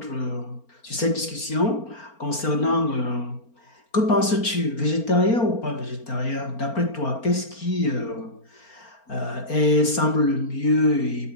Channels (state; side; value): late; right; 4.4 ms